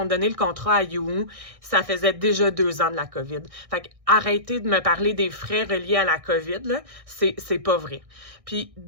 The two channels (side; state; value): left; late; 1.6 ms